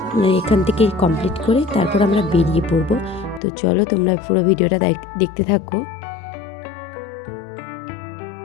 এখান থেকে কমপ্লিট করে তারপর আমরা বেরিয়ে পড়বো। তো চলো তোমরা পুরো ভিডিওটা দেখতে থাকো।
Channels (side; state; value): right; drops out; at 3.4 s